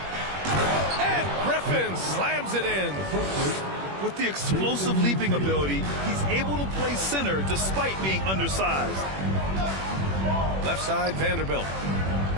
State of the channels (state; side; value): late; left; 21 ms